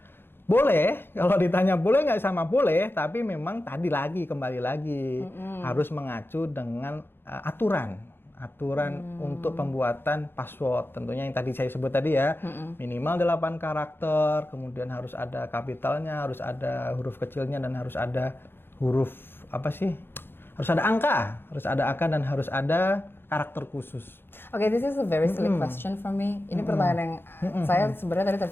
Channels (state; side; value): late; right; 0.10 ms